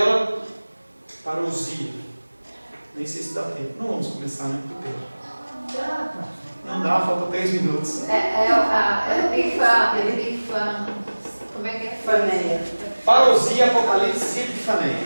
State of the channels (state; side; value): inverted; both; correlation -1.00